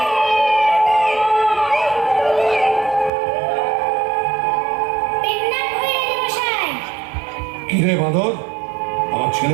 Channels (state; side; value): drops out; left; at 3.1 s